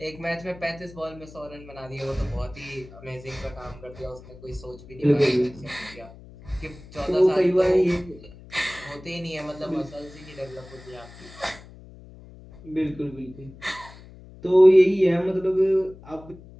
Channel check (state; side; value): noise; left; hum, 19 dB below the sound